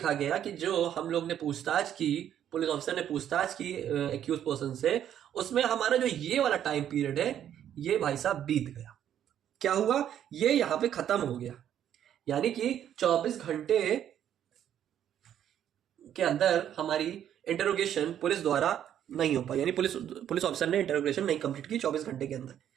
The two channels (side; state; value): left; quieter; 10.2 dB